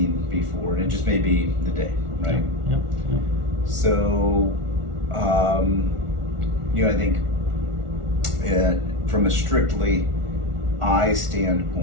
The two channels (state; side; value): late; left; 1.4 ms